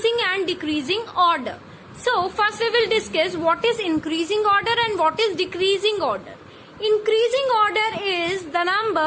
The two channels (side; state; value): both; identical; correlation 1.00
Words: and decreasing order. So first we will discuss what is increasing order and what is decreasing order. Increasing order is the